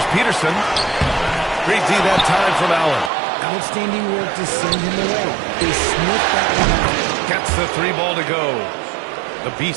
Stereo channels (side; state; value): left; drops out; at 3.1 s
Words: Peterson. Great D that time from Allen. Outstanding work to send him away. They sniffed that one out. Gets the 3 ball to go. The